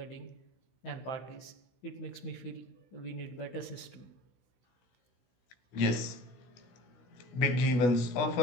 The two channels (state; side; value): late; right; 16 ms